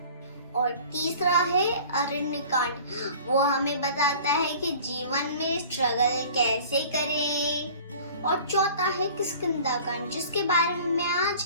और तीसरा है अरण्य कांड, वो हमें बताता है कि जीवन में स्ट्रगल कैसे करें। और चौथा है किष्किंधा कांड, जिसके बारे में मैं आज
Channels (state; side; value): inverted; both; correlation -0.45